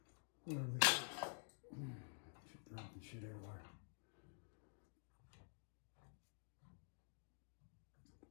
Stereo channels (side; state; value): right; silent; digital silence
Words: are they? She's dropping shit everywhere.